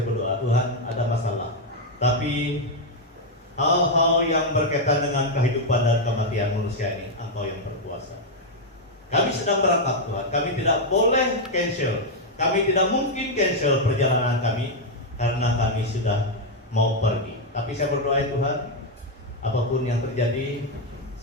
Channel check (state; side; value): normal; both; correlation 0.01